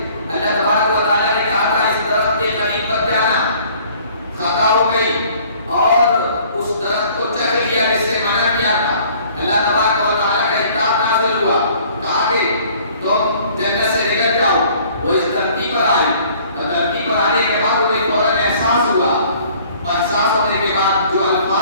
اللہ تبارک و تعالیٰ نے کہا تھا اس درخت کے قریب مت جانا، خطا ہو گئی اور اس درخت کو چکھ لیا جس سے منع کیا تھا۔ اللہ تبارک و تعالیٰ کا اطاعت نازل ہوا، کہا کہ تم جنت سے نکل جاؤ۔ وہ اس دھرتی پر آئی، دھرتی پر آنے کے بعد انہیں فوراً احساس ہوا، احساس ہونے کے بعد جو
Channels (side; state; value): both; inverted; correlation -0.55